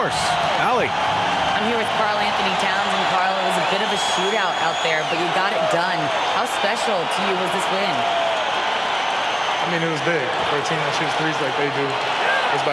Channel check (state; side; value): identical; both; correlation 1.00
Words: Allie. I'm here with Carl Anthony Towns, and Carl, it was a bit of a shootout out there, but you got it done. How special to you was this win? I mean, it was big for a team that shoots threes like they do. It's